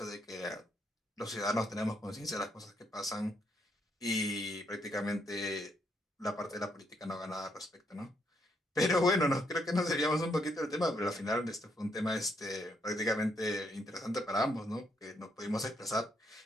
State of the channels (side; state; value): both; normal; correlation 0.75